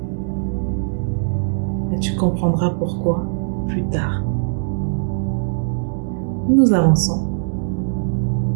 et tu comprendras pourquoi plus tard. Nous avançons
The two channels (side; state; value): left; silent; 65 dB below the other